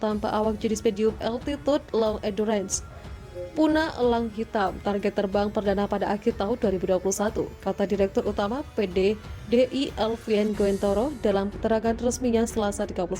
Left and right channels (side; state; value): both; identical; correlation 1.00